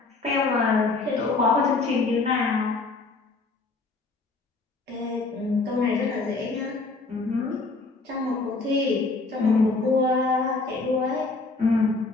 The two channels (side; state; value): right; quieter; 3.7 dB